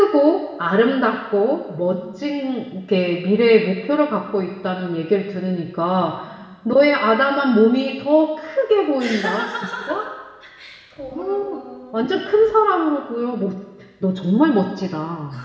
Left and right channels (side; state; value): both; identical; correlation 1.00